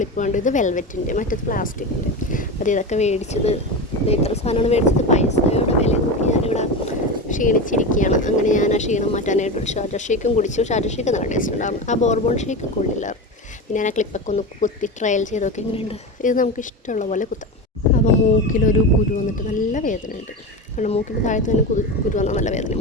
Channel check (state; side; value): normal; both; correlation 0.22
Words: ഉണ്ട്. ഇത് വെൽവെറ്റിൻ്റെ, മറ്റേത് പ്ലാസ്റ്റിക്കിൻ്റെ. അത് ഇതൊക്കെ മേടിച്ചത്, ഇത്ര സാധനമാണ് മേടിച്ചത്. പൈസയുടെ വില നോക്കി ഞാനിവിടെ ക്ഷീണിച്ചിരിക്കുകയാണ്. അങ്ങനെ ഞാൻ ആ ക്ഷീണം മാറ്റാനായിട്ട് ഒരു ഷാർജ ഷേക്കും കുടിച്ചു. ഷാർജ ഷേക്ക് നല്ല ടേസ്റ്റ് ഉണ്ടായിരുന്നു. ആ ബോർബോൺ ഷേക്ക് കൊള്ളില്ലായിരുന്നു. പിന്നെ ഞാൻ ആ ക്ലിപ്പൊക്കെ ഒന്ന് കുത്തി ട്രയൽ ചെയ്തൊക്കെ എങ്ങനെയുണ്ട്. ഇത് നമുക്ക് ഇഷ്ടമുള്ള പോലെ കുത്താം. അപ്പോൾ മൂക്കിലൊരു കുരു വന്നിട്ട് നല്ല വേദനയുണ്ട്. കാരണം മൂക്കിൻ്റെ താഴത്ത് തന്നെ കുരു വന്നാൽ നല്ല വേദന,